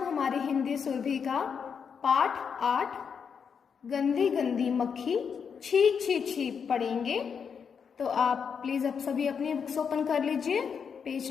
हमारी हिंदी सुरभि का पाठ 8 गंदी गंदी मक्खी छी छी छी पढ़ेंगे। तो आप प्लीज अब सभी अपनी बुक्स ओपन कर लीजिए,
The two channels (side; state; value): right; quieter; 6.6 dB